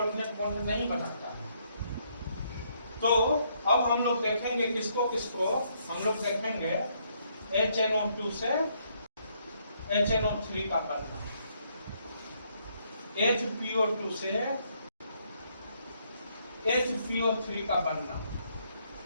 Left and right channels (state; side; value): inverted; both; correlation -0.72